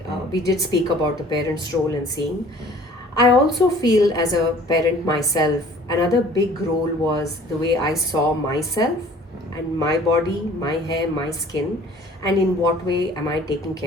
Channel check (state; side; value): normal; both; correlation 0.51